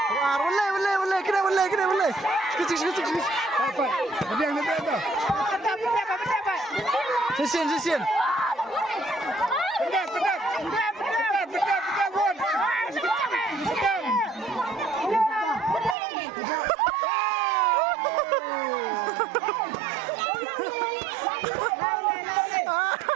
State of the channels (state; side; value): drops out; left; at 16.0 s